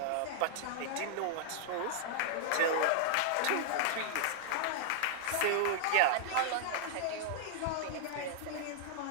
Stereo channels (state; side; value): different; both; correlation -0.01